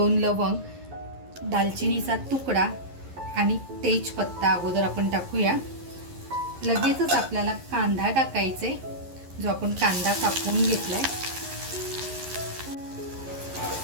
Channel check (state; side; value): late; left; 11 ms